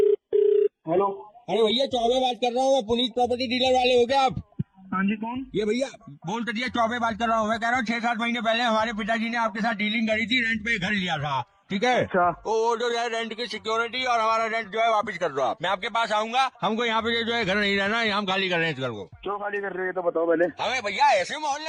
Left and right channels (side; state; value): both; identical; correlation 1.00